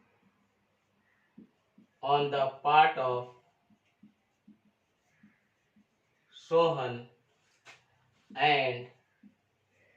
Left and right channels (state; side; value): identical; both; correlation 1.00